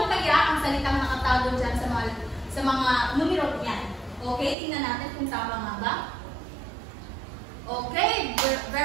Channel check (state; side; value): drops out; left; at 4.5 s